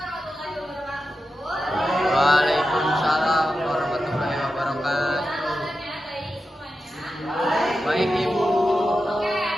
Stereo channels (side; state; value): both; normal; correlation 0.91